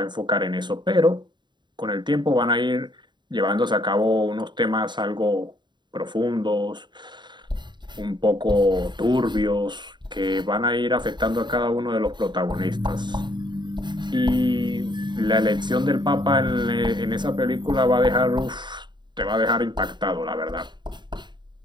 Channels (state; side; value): late; left; 0.22 ms